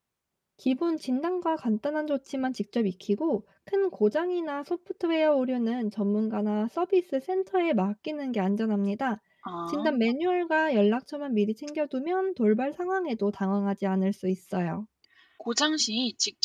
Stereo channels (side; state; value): both; identical; correlation 1.00